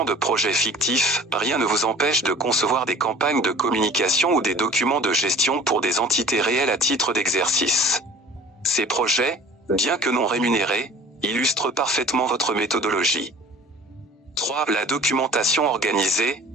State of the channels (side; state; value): both; normal; correlation 0.45